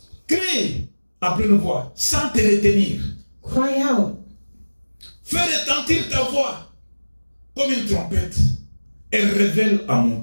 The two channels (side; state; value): both; inverted; correlation -1.00